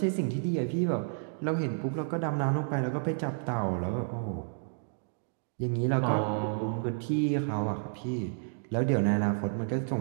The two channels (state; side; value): silent; left; digital silence